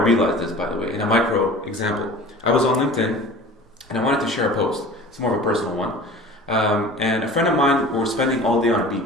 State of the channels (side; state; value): both; normal; correlation 0.41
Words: this, by the way, in a micro example. I was on LinkedIn and I wanted to share a post. It's more of a personal one. And a friend of mine were spending all day on a